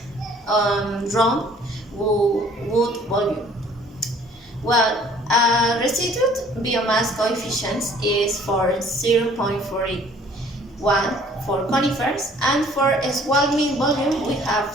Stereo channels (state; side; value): normal; both; correlation 0.55